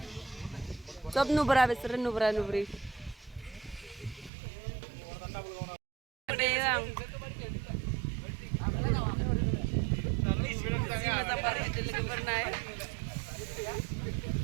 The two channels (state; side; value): drops out; left; at 4.3 s